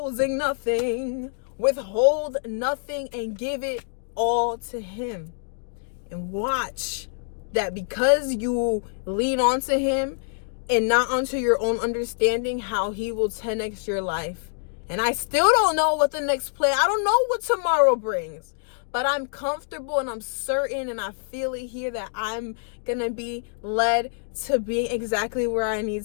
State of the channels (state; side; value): silent; right; digital silence